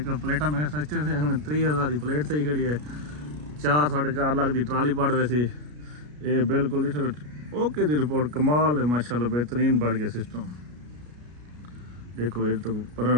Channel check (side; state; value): left; late; 33 ms